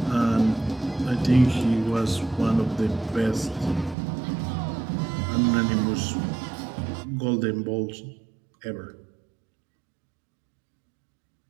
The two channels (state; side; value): drops out; left; at 4.0 s